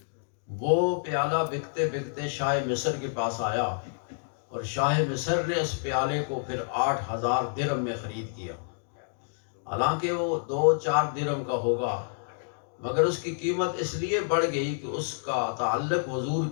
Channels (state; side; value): silent; right; digital silence